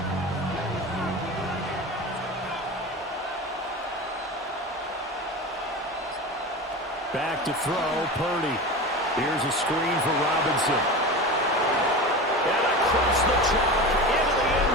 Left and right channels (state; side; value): normal; both; correlation 0.28